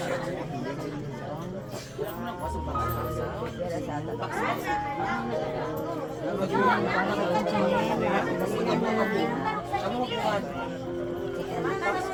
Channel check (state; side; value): identical; both; correlation 1.00